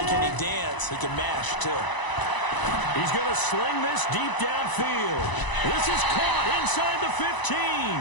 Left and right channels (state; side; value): late; right; 1.0 ms